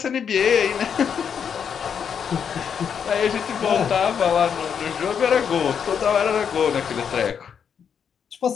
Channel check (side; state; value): right; quieter; 7.4 dB